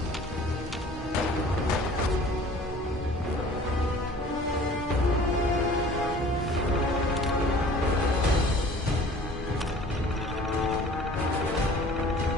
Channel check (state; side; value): normal; both; correlation 0.48